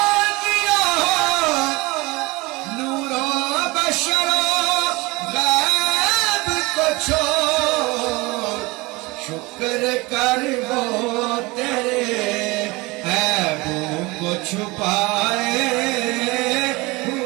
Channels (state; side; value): quieter; left; 23.4 dB